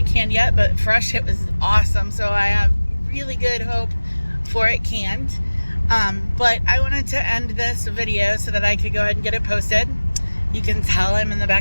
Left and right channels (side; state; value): both; inverted; correlation -1.00